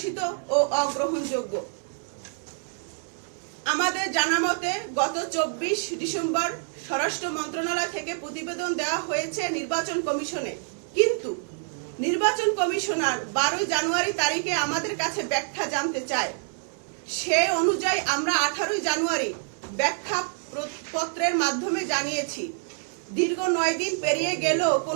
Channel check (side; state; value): left; silent; 60 dB below the other